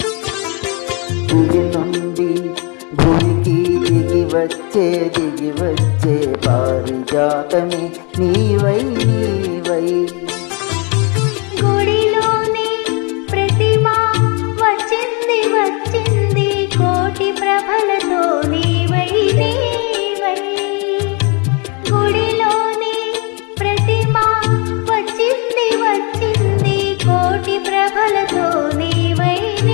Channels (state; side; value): quieter; right; 32.6 dB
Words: దిగి నుండి భూమికి దిగి వచ్చే పారిజాతమే నీవై నీవై. గుడిలోని ప్రతిమ వచ్చింది వచ్చింది కోటి ప్రభలతో నీవై నీవై. గుడిలోని ప్రతిమ వచ్చింది వచ్చింది కోటి ప్రభలతో నీవై